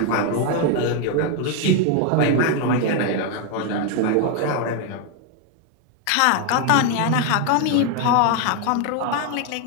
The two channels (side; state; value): both; different; correlation 0.01